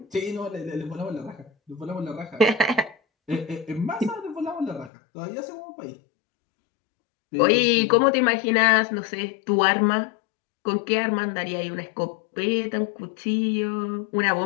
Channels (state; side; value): drops out; right; at 4.9 s